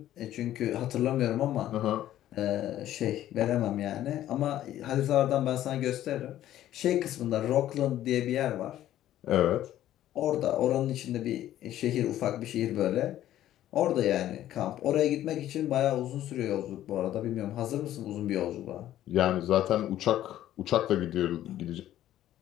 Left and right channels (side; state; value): right; quieter; 12.8 dB